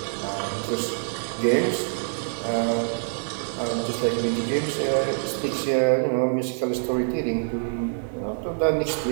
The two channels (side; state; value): left; silent; 61 dB below the other